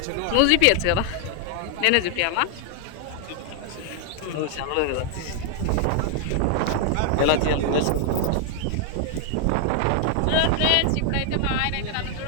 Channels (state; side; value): different; both; correlation 0.00